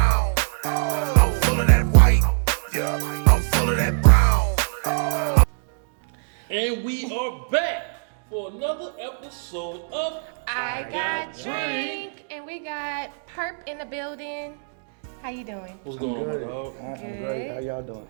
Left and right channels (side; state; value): left; silent; digital silence